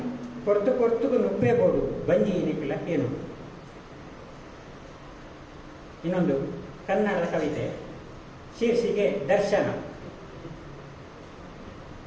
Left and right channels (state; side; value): identical; both; correlation 1.00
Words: ಕೊರ್ತು ನುಪ್ಪೇ ಬೋಡು ಬಂಜಿ ಇನಿಕಲ ಏನು. ಇನ್ನೊಂದು ಕನ್ನಡದ ಕವಿತೆ, ಶೀರ್ಷಿಕೆ ದರ್ಶನ.